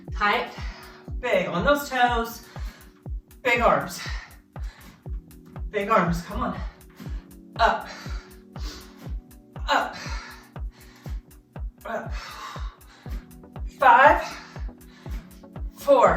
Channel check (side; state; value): both; identical; correlation 1.00